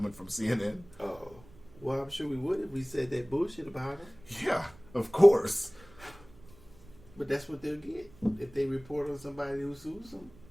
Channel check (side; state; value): right; noise; rumble, 23 dB below the sound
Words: from CNN. Oh. Well, I'm sure we would if we said that bullshit about him. Yeah, of course. But that's what they'll get if they report on somebody who sues